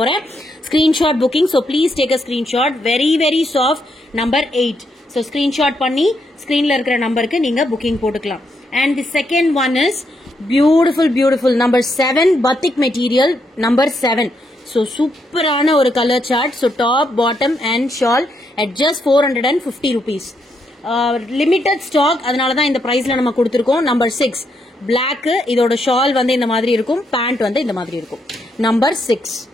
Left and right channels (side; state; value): both; normal; correlation 0.78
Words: Screenshot booking, so please take a screenshot. Very soft, number 8. So screenshot பண்ணி ஸ்கிரீன்ல இருக்கிற நம்பருக்கு நீங்க புக்கிங் போட்டுக்கலாம். And the second one is beautiful number 7 batik material number 7. So சூப்பரான ஒரு colour chart. So top, bottom and shawl at just 450 rupees. Limited stock, அதனாலதான் இந்த பிரைஸ்ல நம்ம கொடுத்திருக்கோம். Number 6 black, இதோட shawl வந்து இந்த மாதிரி இருக்கும், pant வந்து இந்த மாதிரி இருக்கும். Number 6.